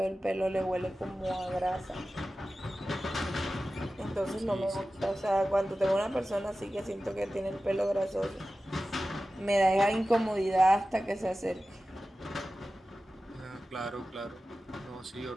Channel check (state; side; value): normal; both; correlation 0.95